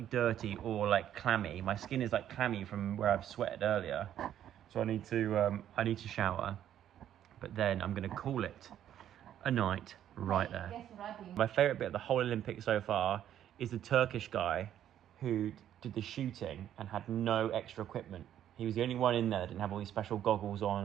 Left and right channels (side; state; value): left; quieter; 10.8 dB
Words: dirty or like clammy. My skin is like clammy from where I've sweated earlier, so I need to shower. But then I'm gonna call it a night right there. Guess what I've been... My favourite bit of the whole Olympics so far is the Turkish guy who did the shooting and had no extra equipment. He was the only one in there that didn't have all these special goggles on